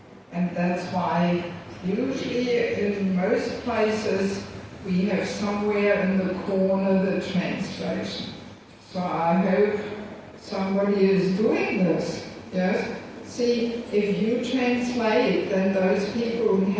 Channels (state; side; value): identical; both; correlation 1.00